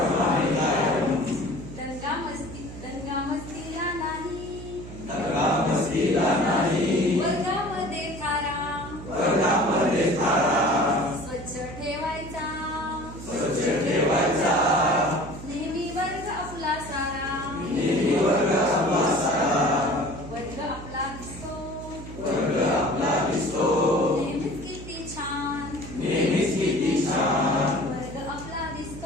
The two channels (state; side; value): noise; right; hum, 12 dB below the sound